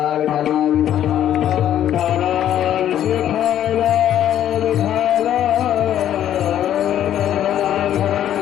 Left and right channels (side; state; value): right; quieter; 11.0 dB